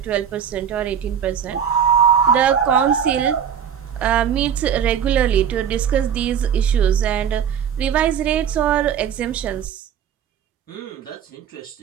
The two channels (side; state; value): left; quieter; 8.4 dB